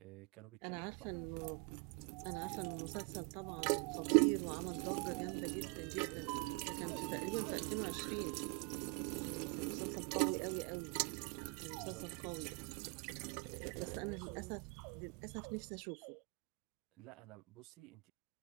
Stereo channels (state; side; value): quieter; left; 32.6 dB